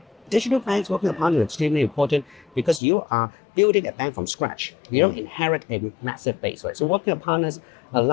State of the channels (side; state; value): right; drops out; at 2.8 s